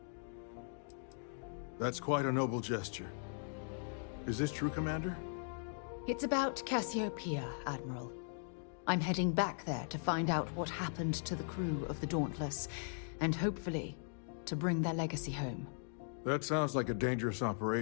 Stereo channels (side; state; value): right; silent; digital silence